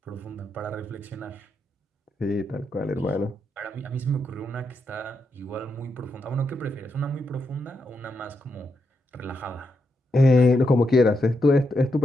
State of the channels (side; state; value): both; normal; correlation 0.82